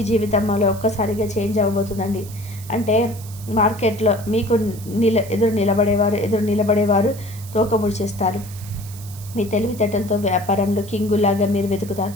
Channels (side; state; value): right; noise; hiss, 17 dB below the sound